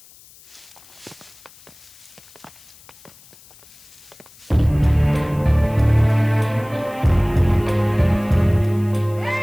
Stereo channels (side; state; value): left; noise; hiss, 24 dB below the sound